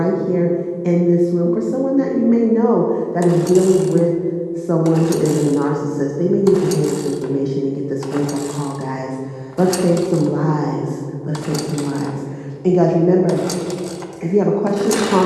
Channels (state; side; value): identical; both; correlation 1.00